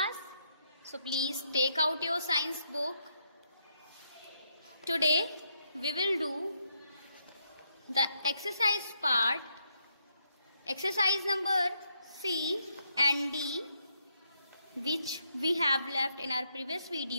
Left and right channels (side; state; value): both; inverted; correlation -0.77